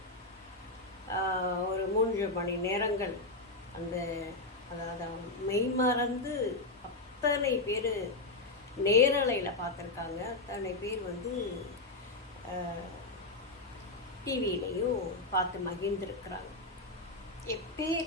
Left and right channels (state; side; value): quieter; right; 3.1 dB